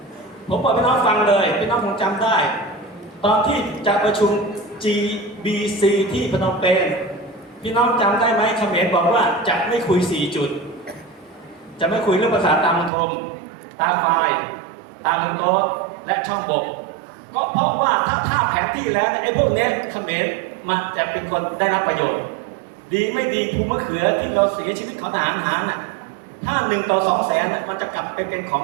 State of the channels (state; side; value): drops out; left; at 12.9 s